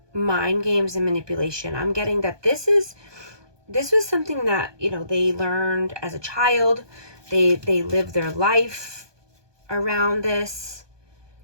mind games and manipulation. I'm getting that this was something that, you know, they learned as a child. They lived their life around this.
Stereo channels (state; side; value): late; left; 1.2 ms